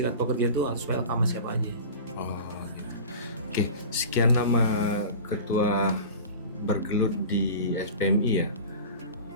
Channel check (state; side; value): inverted; both; correlation -0.35